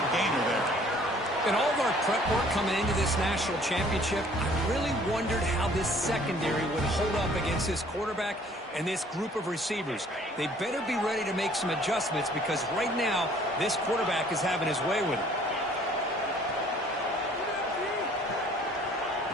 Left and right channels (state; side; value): normal; both; correlation 0.56